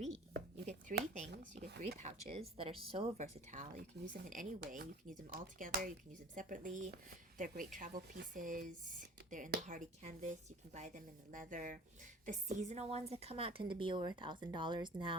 You get three things. You get three pouches that are so versatile. You can use them in any way. You can use them all together. You can use them separately. They're great travel pieces. They're in the hardy canvas. You can buy them in the leather. The seasonal ones that come out tend to be over $1,000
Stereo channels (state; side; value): normal; both; correlation 0.45